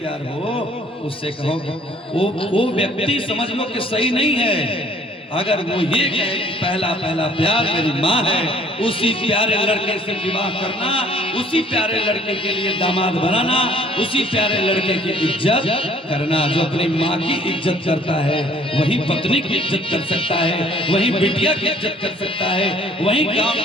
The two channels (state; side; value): normal; both; correlation 0.55